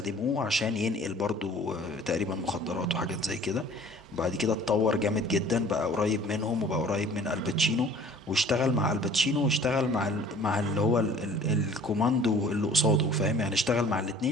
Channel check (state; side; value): normal; both; correlation 0.50